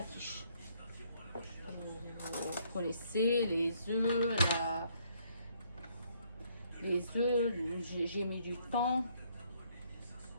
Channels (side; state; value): both; inverted; correlation -0.68